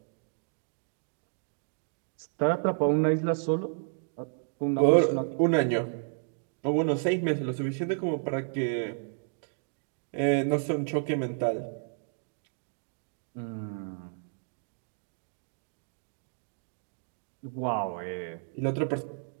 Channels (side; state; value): left; silent; digital silence